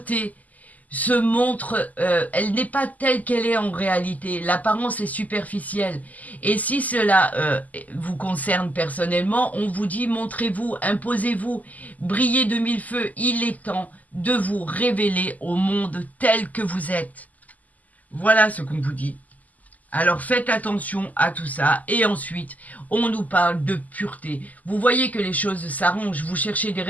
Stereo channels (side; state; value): right; late; 0.078 ms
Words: se montre, elle n'est pas telle qu'elle est en réalité. L'apparence est superficielle. Et si cela vous concerne personnellement, on vous dit montrez-vous, imposez-vous, brillez de mille feux. Il est temps de vous révéler au monde tel que vous êtes. Voilà ce qu'on vous dit. Alors faites attention à tout ça. Et ensuite, on nous parle de pureté. Vous voyez que les choses s'arrangent, vous cherchez des